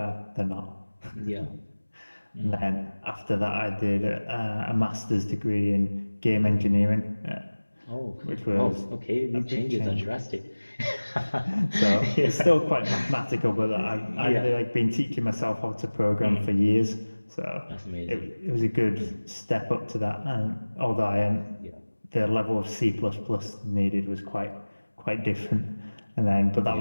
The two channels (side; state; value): both; inverted; correlation -1.00